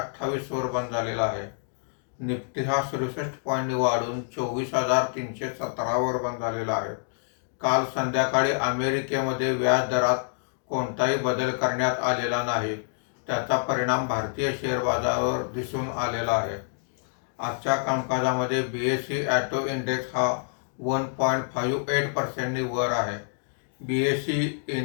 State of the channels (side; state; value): right; silent; digital silence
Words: वर बंद झालेला आहे. निफ्टी हा 67 पॉईंटनी वाढून 24,317 वर बंद झालेला आहे. काल संध्याकाळी अमेरिकेमध्ये व्याज दरात कोणताही बदल करण्यात आलेला नाही. त्याचा परिणाम भारतीय शेअर बाजारावर दिसून आलेला आहे. आजच्या कामकाजामध्ये BSE ऑटो इंडेक्स हा 1.58% वर आहे. BSE